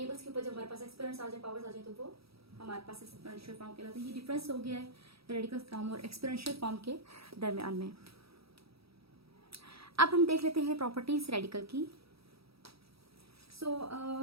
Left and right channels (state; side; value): late; left; 0.77 ms